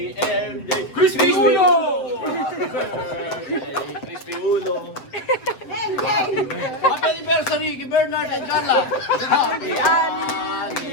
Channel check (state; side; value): late; right; 7.9 ms